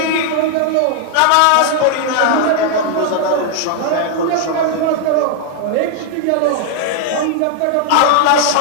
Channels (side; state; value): both; different; correlation 0.00